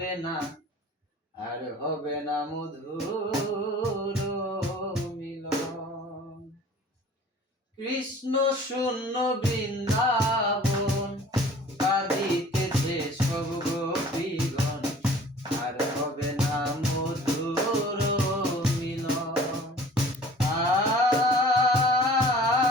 না, আর হবে না মধুর মিলন। কৃষ্ণ শূন্য বৃন্দাবন কাঁদিতেছে সব গোপীগণ, আর হবে না মধুর মিলন।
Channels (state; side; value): normal; both; correlation 0.48